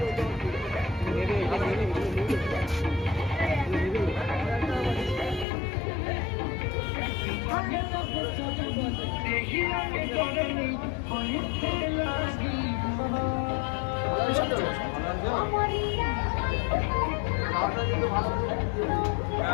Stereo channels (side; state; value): right; drops out; at 5.5 s